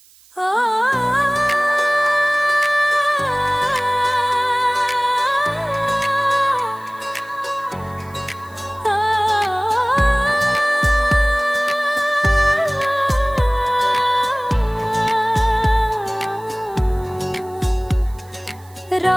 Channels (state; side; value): noise; right; hiss, 27 dB below the sound